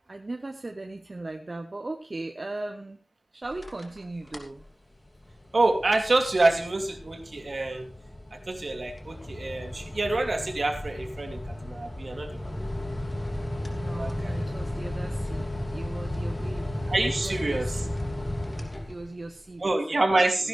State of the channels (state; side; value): normal; both; correlation 0.97